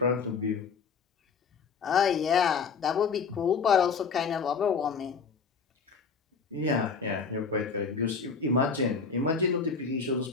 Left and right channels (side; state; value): right; quieter; 5.4 dB